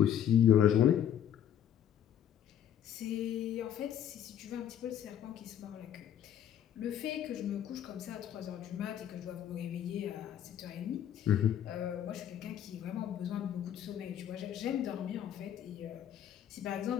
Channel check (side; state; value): right; quieter; 10.0 dB